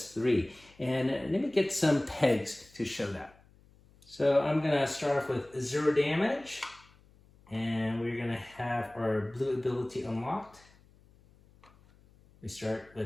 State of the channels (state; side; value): noise; left; hum, 28 dB below the sound